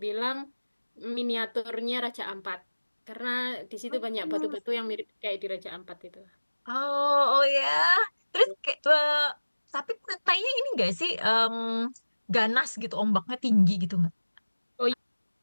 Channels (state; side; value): inverted; both; correlation -1.00